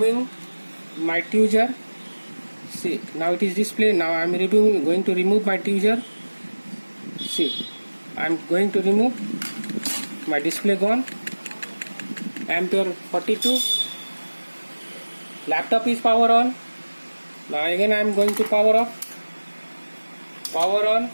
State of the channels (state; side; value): inverted; both; correlation -1.00